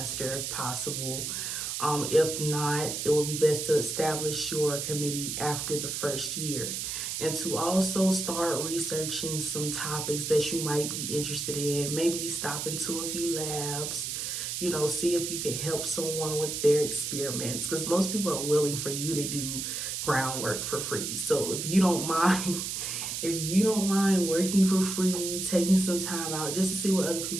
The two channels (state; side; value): noise; right; hiss, 3 dB below the sound